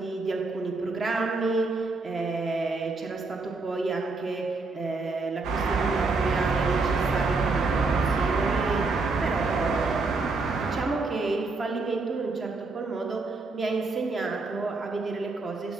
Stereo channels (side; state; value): left; quieter; 3.7 dB